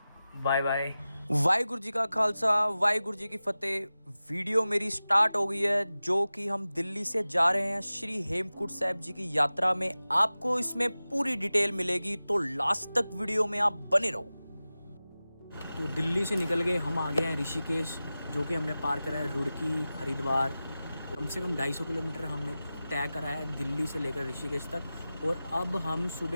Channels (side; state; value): both; inverted; correlation -0.96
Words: Bye bye. वाहिगुरु जी का खालसा, वाहिगुरु जी की फतेह। वीडियो मेरी स्टार्ट हो गई है, जो कि हम दिल्ली से जा रहे हैं श्री हेमकुंट साहिब जी की यात्रा में। आपको इसमें पूरी डिटेल मिलेगी, तो लास्ट तक वीडियो में आप बने रहो। तो दिल्ली से निकल गए, हम आ गए हैं ऋषिकेश, जो कि हमने पार करा है रुड़की हरिद्वार। कम से कम 250 किलोमीटर हमने तय करा है दिल्ली से लेकर ऋषिकेश तक। और अब हम